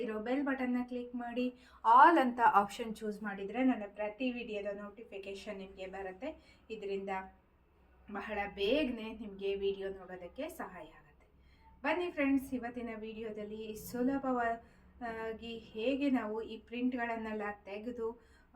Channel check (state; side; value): identical; both; correlation 1.00